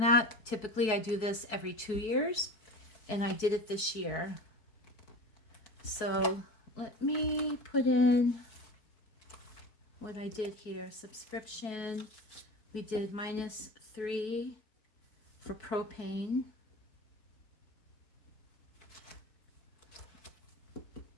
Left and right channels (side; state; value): right; late; 4.6 ms